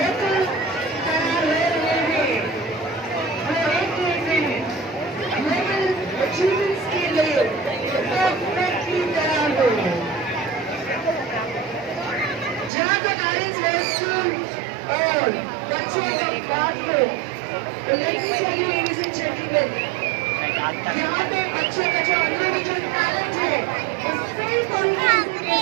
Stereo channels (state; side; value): drops out; left; at 12.7 s